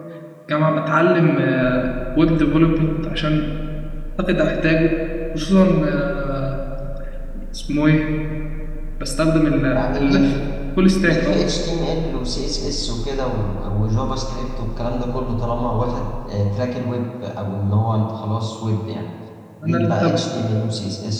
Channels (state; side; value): identical; both; correlation 1.00